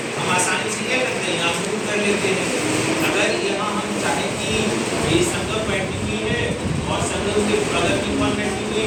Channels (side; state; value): both; identical; correlation 1.00